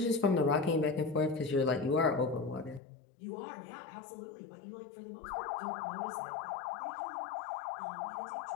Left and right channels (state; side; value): drops out; right; at 2.8 s